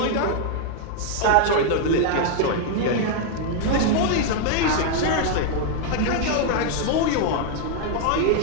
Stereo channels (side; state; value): both; different; correlation 0.00